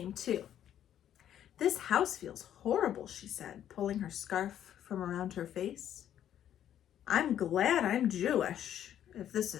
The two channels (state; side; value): quieter; right; 10.6 dB